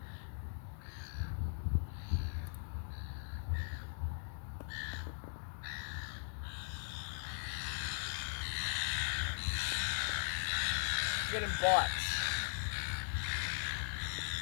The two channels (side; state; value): right; silent; digital silence